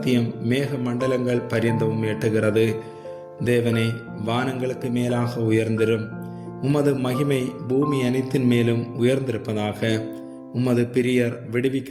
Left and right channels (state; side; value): identical; both; correlation 1.00